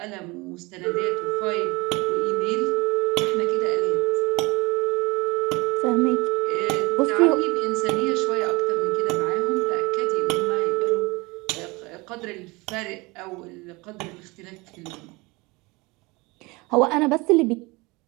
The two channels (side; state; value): left; quieter; 24.6 dB